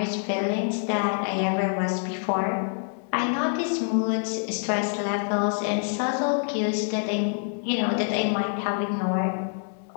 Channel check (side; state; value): right; silent; 59 dB below the other